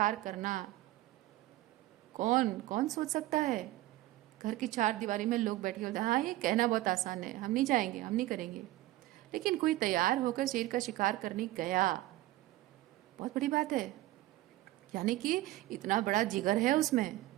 करना कौन कौन सोच सकता है? घर की चार दीवारी में लोग बैठे होते हैं, हाँ ये कहना बहुत आसान है, हम नहीं जाएंगे, हम नहीं करेंगे, लेकिन कोई तैयार होकर शेर का शिकार करने गया, बहुत बड़ी बात है। यानी कि इतना बड़ा जिगर है उसमें,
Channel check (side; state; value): left; quieter; 16.8 dB